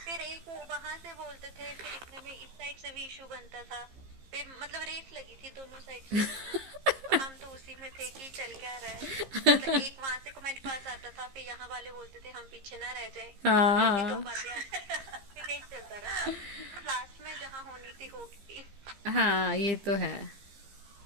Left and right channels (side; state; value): left; late; 15 ms